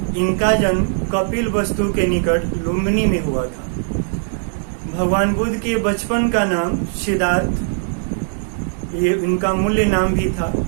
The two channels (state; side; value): silent; left; digital silence